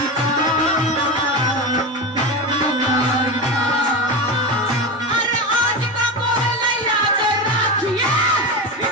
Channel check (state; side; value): normal; both; correlation 0.21